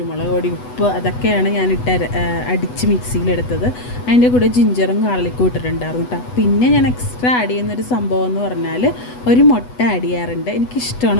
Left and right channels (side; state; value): right; late; 8.1 ms